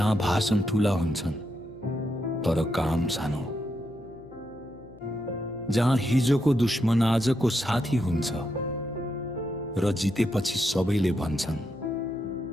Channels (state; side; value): noise; left; hum, 21 dB below the sound